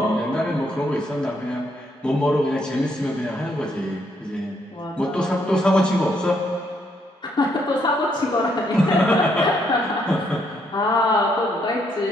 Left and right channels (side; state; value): both; normal; correlation 0.73